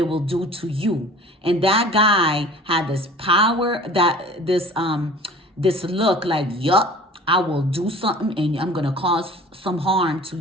will do to you. And that guy had this power, this look like, yup, I will do something and I'm going to cause some harm to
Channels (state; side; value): normal; both; correlation 0.45